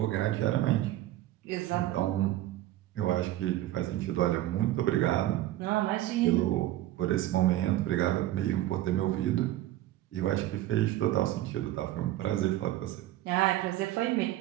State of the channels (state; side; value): quieter; left; 14.7 dB